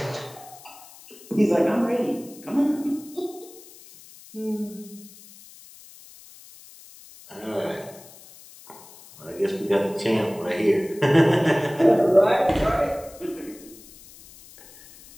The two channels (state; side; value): noise; left; hiss, 21 dB below the sound